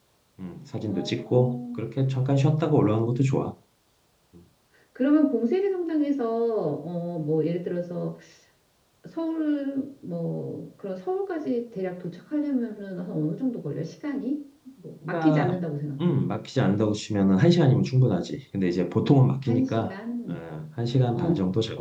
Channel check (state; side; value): identical; both; correlation 1.00